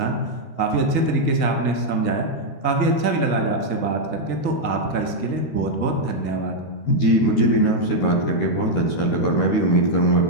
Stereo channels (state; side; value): late; right; 13 ms